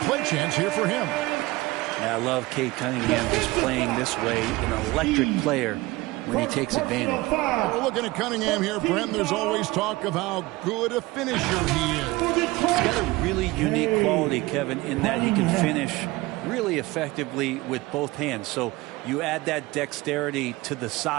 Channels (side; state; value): left; quieter; 20.5 dB